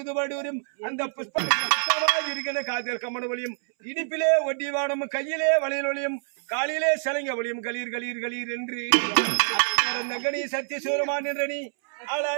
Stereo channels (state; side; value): silent; left; 61 dB below the other